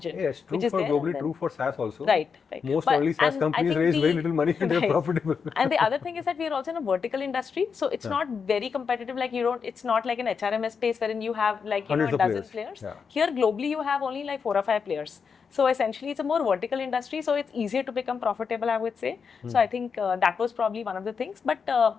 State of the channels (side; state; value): right; quieter; 6.0 dB